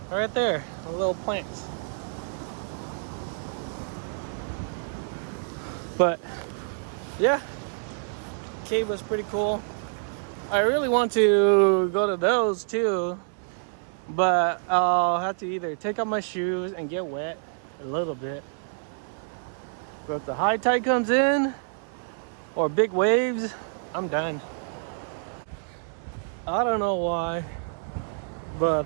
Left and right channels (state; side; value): silent; left; digital silence